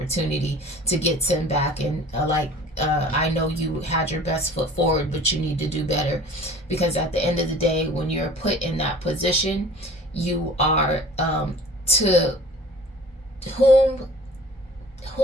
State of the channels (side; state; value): both; normal; correlation 0.46